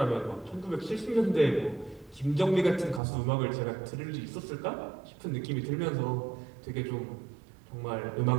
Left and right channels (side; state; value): left; drops out; at 3.0 s